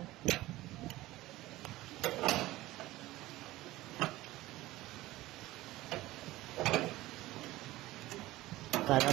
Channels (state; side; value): quieter; left; 17.5 dB